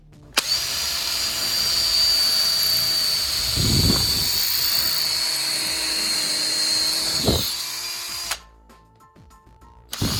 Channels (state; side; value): identical; both; correlation 1.00